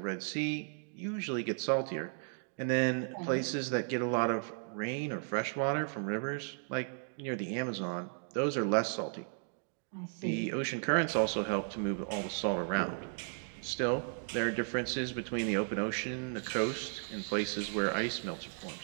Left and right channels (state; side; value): silent; left; 54 dB below the other